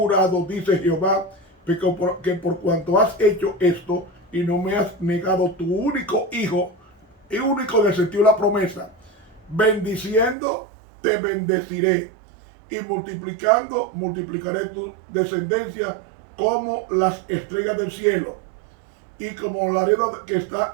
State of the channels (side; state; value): left; drops out; at 10.4 s